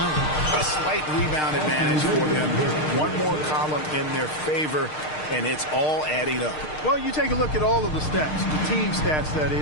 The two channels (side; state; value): right; late; 6.5 ms